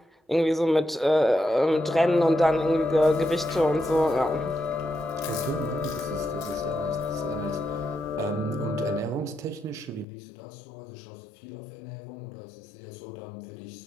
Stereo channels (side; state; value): right; drops out; at 10.1 s